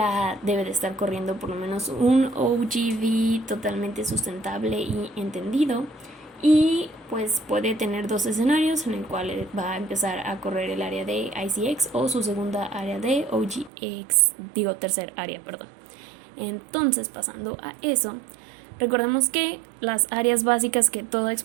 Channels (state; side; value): drops out; left; at 13.7 s